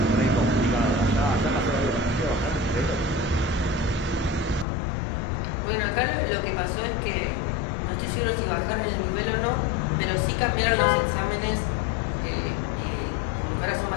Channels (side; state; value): right; drops out; at 4.7 s